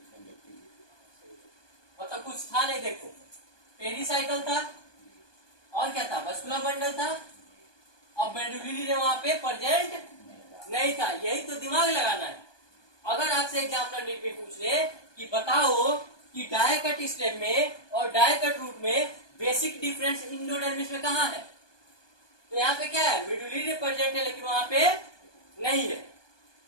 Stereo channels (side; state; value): right; late; 1.2 ms